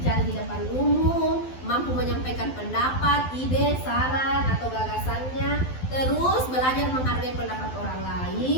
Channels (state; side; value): late; right; 12 ms